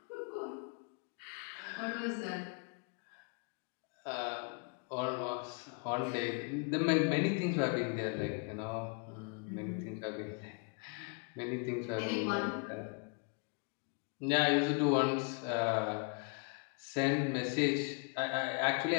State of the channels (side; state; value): right; quieter; 35.4 dB